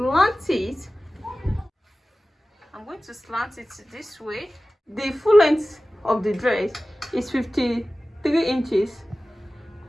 it. I'm going to slant it this way. The full length of the dress is 53 inches.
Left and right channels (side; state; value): both; normal; correlation 0.96